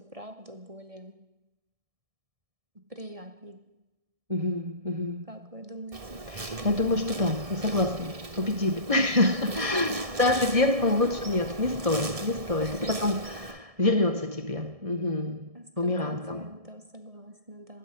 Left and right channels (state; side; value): late; left; 1.7 ms